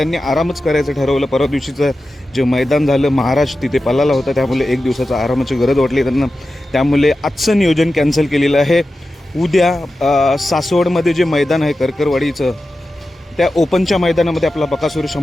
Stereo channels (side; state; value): both; normal; correlation 0.93